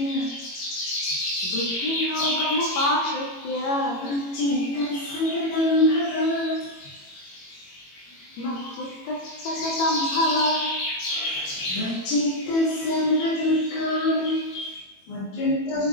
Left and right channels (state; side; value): late; right; 21 ms